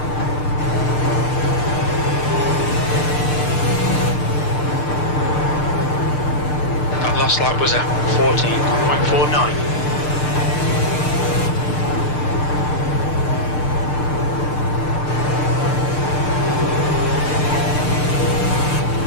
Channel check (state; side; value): late; right; 6.7 ms